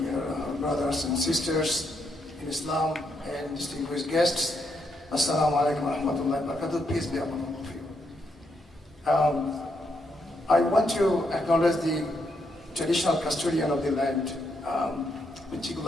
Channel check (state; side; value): normal; both; correlation 0.79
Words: brothers and sisters in Islam and distinguished guests, Assalamu alaikum wa rahmatullahi wa barakatuh. Peace be upon all of you. I want to acknowledge the traditional custodian of the land,